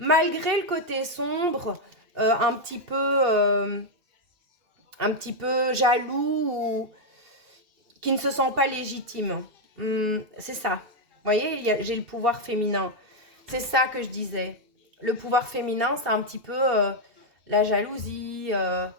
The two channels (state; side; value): late; left; 2.6 ms